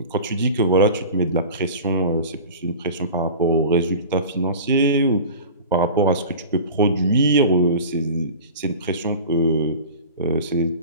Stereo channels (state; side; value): inverted; both; correlation -0.36